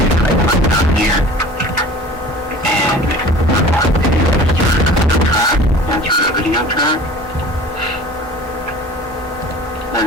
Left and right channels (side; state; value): both; normal; correlation 0.43